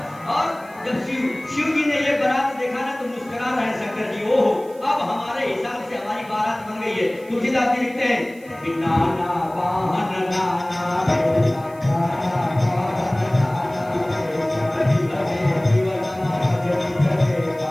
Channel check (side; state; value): right; noise; hiss, 26 dB below the sound